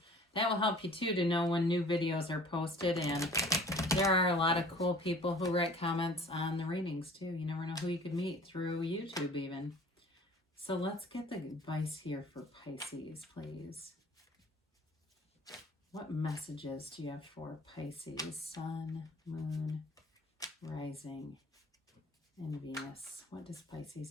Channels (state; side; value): normal; both; correlation 0.48